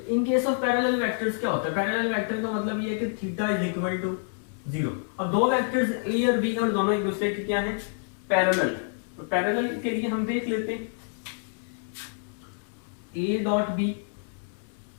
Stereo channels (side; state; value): right; silent; digital silence